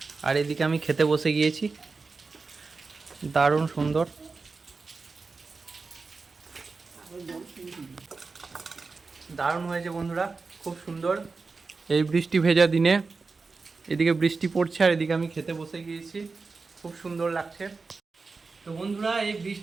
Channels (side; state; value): left; quieter; 4.3 dB